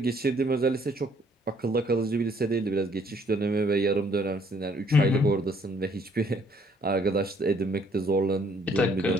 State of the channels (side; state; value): both; normal; correlation 0.64